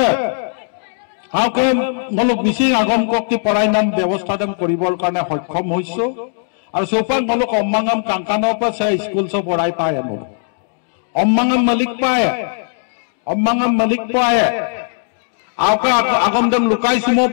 মিচিং আগম কক্তি পৰাই নাম ব্যৱস্থা কৰিবৰ কাৰণে সক্ষম হৈছো। আৰু চৌপাক মলক অম্মাঙাম কাংকানৰ পৰা স্কুল সব পঢ়াই পায় মোৰ অম্মাঙাম মালিক পায় আউকা আগম দেম লুকাই সুমো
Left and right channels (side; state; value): right; silent; digital silence